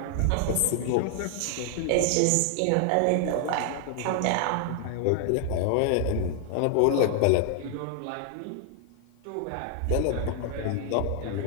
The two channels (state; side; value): different; both; correlation 0.00